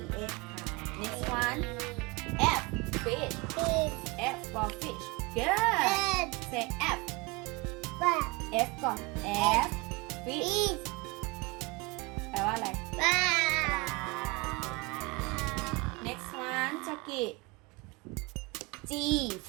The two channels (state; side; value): quieter; left; 25.8 dB